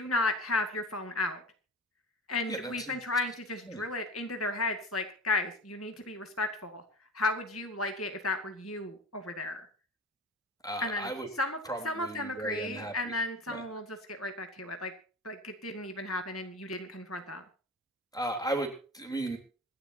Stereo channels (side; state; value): both; normal; correlation 0.33